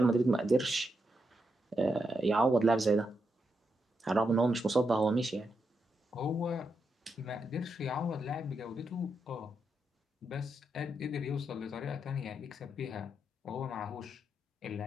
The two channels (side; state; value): both; normal; correlation 0.83